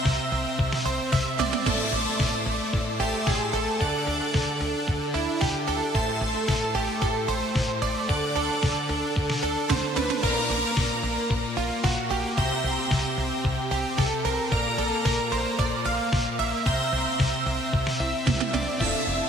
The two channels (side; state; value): both; normal; correlation 0.65